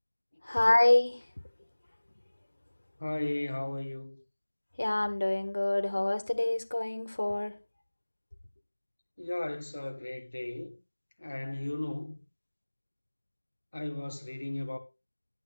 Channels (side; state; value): both; inverted; correlation -1.00